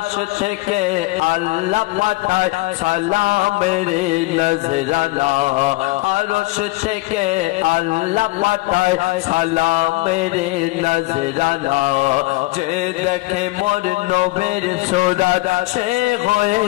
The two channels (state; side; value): quieter; right; 21.4 dB